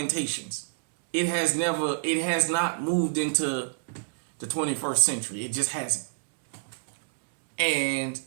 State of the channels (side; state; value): left; silent; digital silence